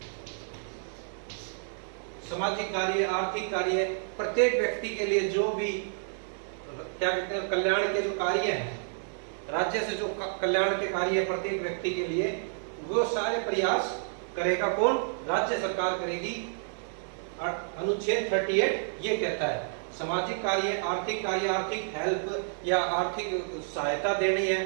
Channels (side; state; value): left; silent; digital silence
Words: सामाजिक कार्य, आर्थिक कार्य, प्रत्येक व्यक्ति के लिए जो भी क्या कहते हैं कल्याण के जो कार्य हैं, राज्य से जो कल्याण के कार्य है प्रत्येक व्यक्ति के लिए, वो सारे प्रयास करेगा कौन? राज्य सरकार करेगी। अनुच्छेद 38 ये कहता है सामाजिक कार्य, आर्थिक हेल्प या आर्थिक सहायता देनी है,